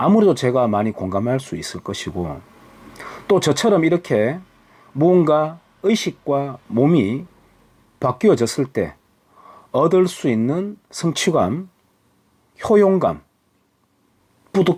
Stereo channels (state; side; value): identical; both; correlation 1.00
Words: 제가 많이 공감할 수 있을 것이고 또 저처럼 이렇게 무언가 의식과 몸이 바뀌어졌을 때 얻을 수 있는 성취감, 효용감,